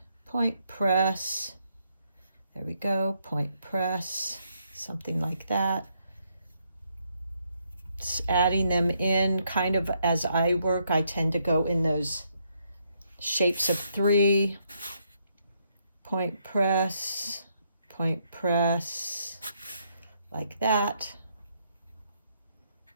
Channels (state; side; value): inverted; both; correlation -0.75